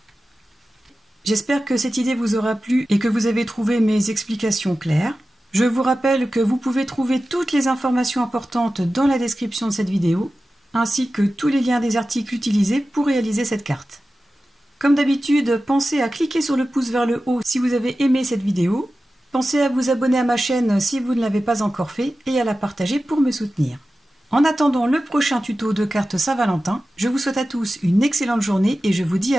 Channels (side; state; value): both; normal; correlation 0.94